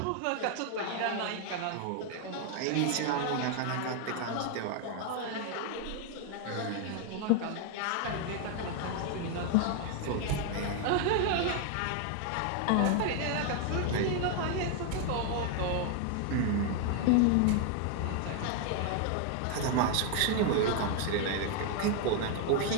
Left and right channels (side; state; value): both; different; correlation 0.00